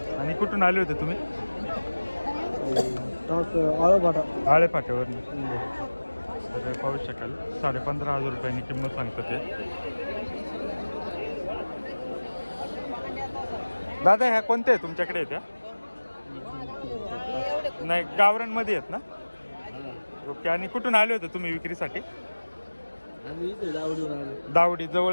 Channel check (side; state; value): both; inverted; correlation -1.00